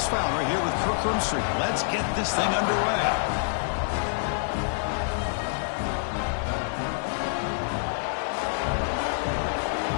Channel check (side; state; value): right; silent; digital silence